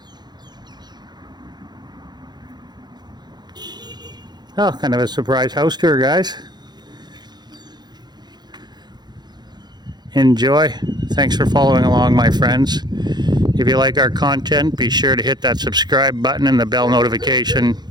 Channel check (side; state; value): left; late; 0.21 ms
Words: Oh, kind of a surprise house tour, guys. Enjoy. Thanks for following along, my friends. If you like our content, be sure to hit that subscribe button and the bell notification.